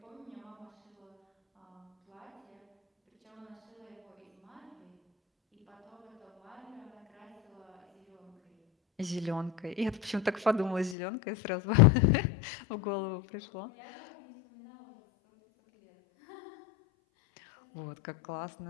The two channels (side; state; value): right; drops out; at 11.0 s